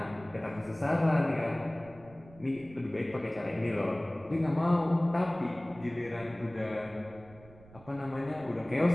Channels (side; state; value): right; noise; rumble, 22 dB below the sound